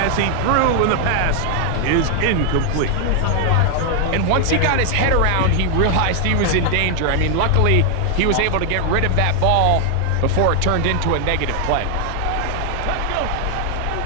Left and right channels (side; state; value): both; different; correlation 0.00